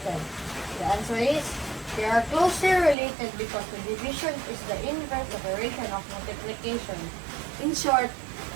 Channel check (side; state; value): left; drops out; at 3.0 s